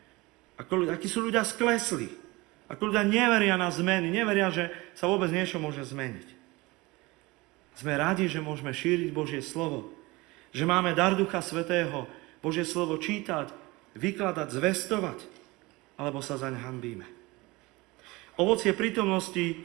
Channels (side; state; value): left; quieter; 22.4 dB